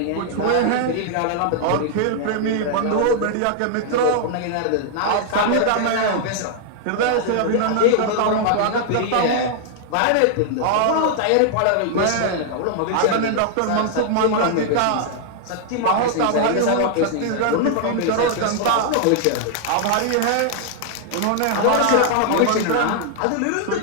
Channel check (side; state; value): both; different; correlation 0.00